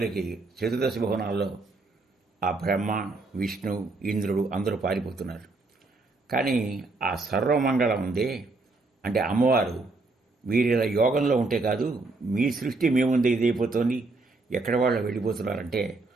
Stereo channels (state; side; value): quieter; left; 3.4 dB